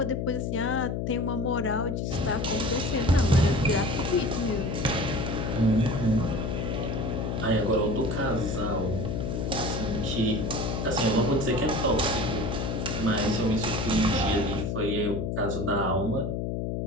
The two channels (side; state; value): left; noise; hum, 1 dB below the sound